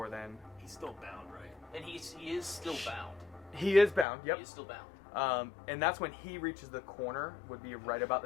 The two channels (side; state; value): right; drops out; at 4.0 s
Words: then. He's still bound, right? And he is still bound. He is bound. Yep. He is still bound. And that's when he reaches the corner. Would be right about